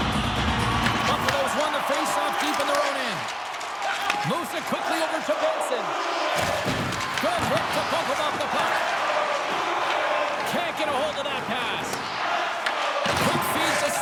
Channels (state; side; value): identical; both; correlation 1.00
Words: Buffalo's won the faceoff deep in their own end. Moves it quickly over to Benson. Good hit to bump him off the puck. Can't get a hold of that pass. Quick feed to